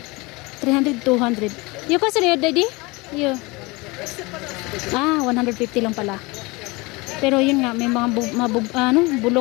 200. Yung kasi rin, daddy? Yung. 150 lang pala. Pero yun nga, may mga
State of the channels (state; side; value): quieter; right; 24.7 dB